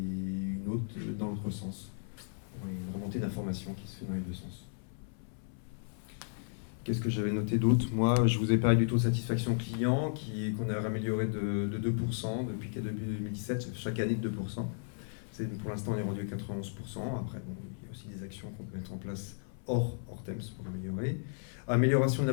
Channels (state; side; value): silent; right; 55 dB below the other